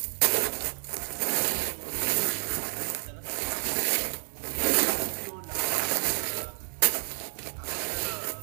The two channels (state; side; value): silent; left; 58 dB below the other